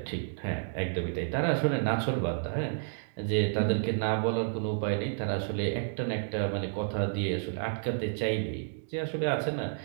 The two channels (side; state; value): left; silent; digital silence